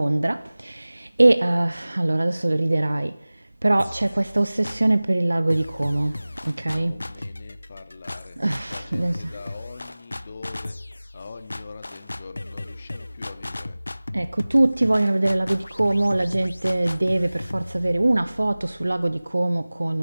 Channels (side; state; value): both; inverted; correlation -0.99